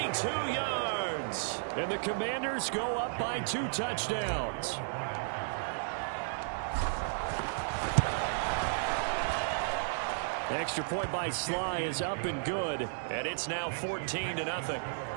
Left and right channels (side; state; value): left; silent; digital silence